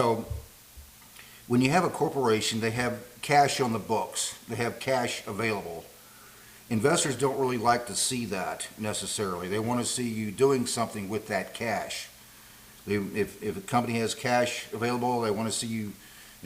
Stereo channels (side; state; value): both; identical; correlation 1.00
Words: when you have a corporation, they have cash on the books. They have cash available. Investors don't really like to see that necessarily. They want to see you doing something with that cash. If a company has cash available, they want to see you,